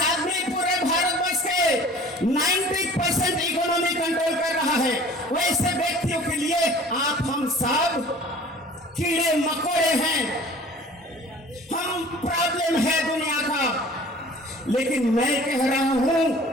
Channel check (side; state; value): both; normal; correlation 0.47